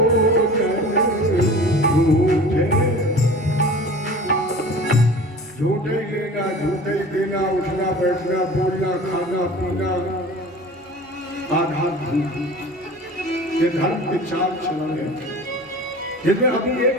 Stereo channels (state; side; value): normal; both; correlation 0.40